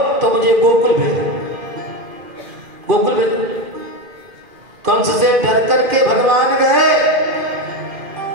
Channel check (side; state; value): left; late; 2.5 ms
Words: तो मुझे गोकुल भेजो, गोकुल भेजो। कंस से डर करके भगवान गए।